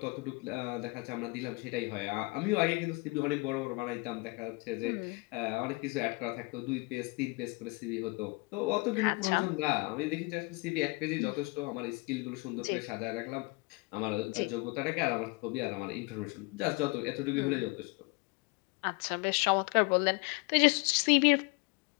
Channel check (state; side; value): quieter; right; 27.6 dB